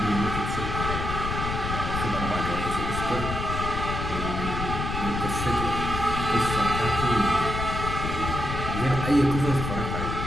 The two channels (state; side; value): noise; left; rumble, 3 dB below the sound